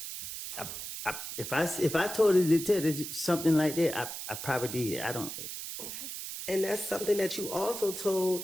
If I told the detective something like that, I probably did. I don't. Okay. And that's something that you also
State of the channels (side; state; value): right; noise; hiss, 7 dB below the sound